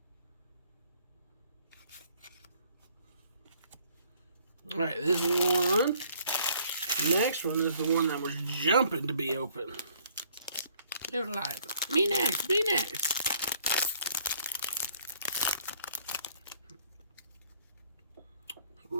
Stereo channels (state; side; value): inverted; both; correlation -0.61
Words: Alright, this is one. The next one is the one that was jumping to be open. They were like, me next, me next.